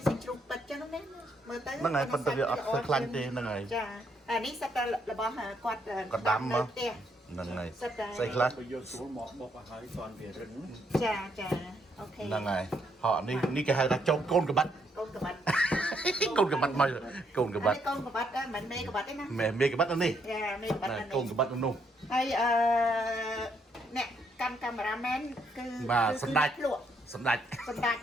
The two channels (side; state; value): both; normal; correlation 0.73